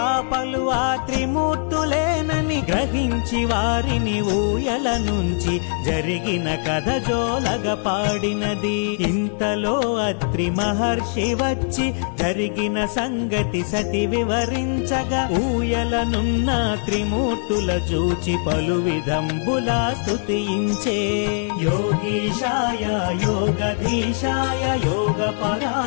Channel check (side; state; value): right; silent; 62 dB below the other